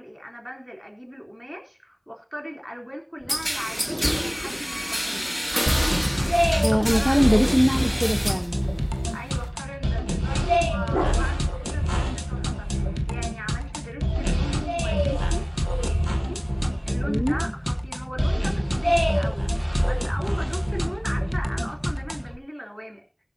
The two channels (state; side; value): identical; both; correlation 1.00